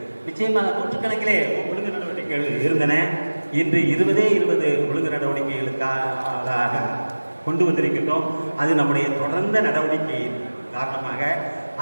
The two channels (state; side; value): inverted; both; correlation -1.00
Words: நிச்சயமாக நூற்றுக்கணக்கிலே ஒழுங்கு நடவடிக்கைகள் இருந்தன. இன்று 20 ஒழுங்கு நடவடிக்கைகளுக்காக கொண்டு வந்திருக்கின்றோம். அது நம்முடைய தொடர்ந்த நடவடிக்கையின் காரணமாக